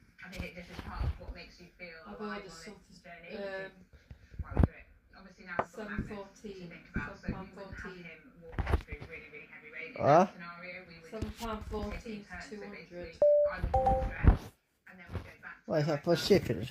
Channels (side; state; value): both; identical; correlation 1.00